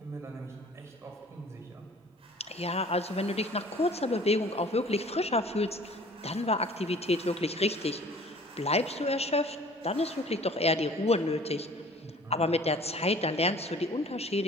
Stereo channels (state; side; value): normal; both; correlation 0.49